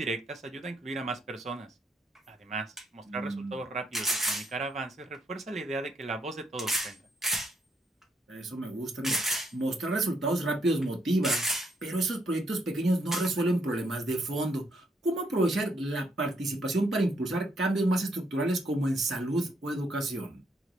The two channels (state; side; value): normal; both; correlation 0.73